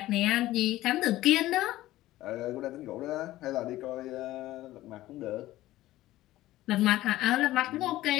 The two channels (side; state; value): right; quieter; 15.8 dB